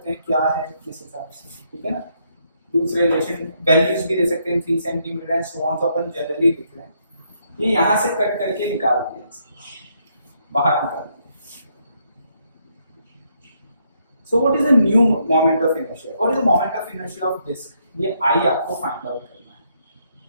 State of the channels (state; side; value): inverted; both; correlation -0.74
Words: हैं क्या है किस हिसाब से, ठीक है ना। दूसरे रिलेशन वैल्यूज भी दे सकते हैं 3 सेंटीमीटर एंड सो ऑन, तो अपन जनरली लिख रहे हैं। ये यहां से कट करके निकाल दिया, बाहर निकाल दिया। So what is the new moment of inertia? What is the moment of inertia of disk? ये I आपको find out करना है।